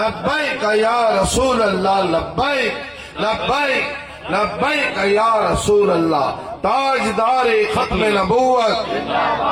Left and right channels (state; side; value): identical; both; correlation 1.00